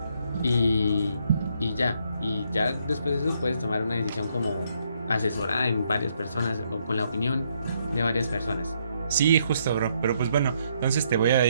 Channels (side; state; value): both; inverted; correlation -0.73